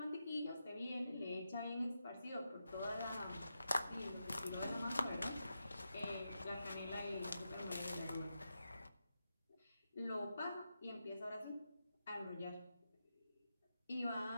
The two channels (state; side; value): inverted; both; correlation -0.88